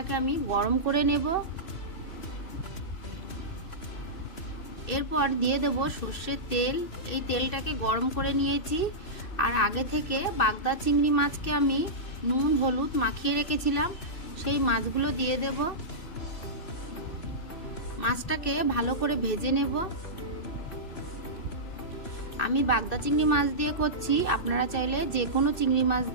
আমি গরম করে নেব। এরপর দিয়ে দেব সর্ষের তেল। এই তেলটাকে গরম করে নিয়েছি। আর আগে থেকে বাগদা চিংড়ি মাছকে আমি নুন হলুদ মাখিয়ে রেখেছিলাম, সেই মাছগুলো দিয়ে দেব। মাছটাকে ভালো করে ভেজে নেব। আমি বাগদা চিংড়ি মাছ দিয়ে করছি, আপনারা চাইলে যে কোনো চিংড়ি মাছ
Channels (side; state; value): right; late; 2.6 ms